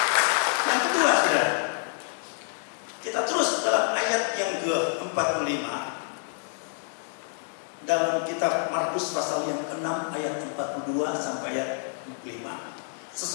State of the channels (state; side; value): silent; right; digital silence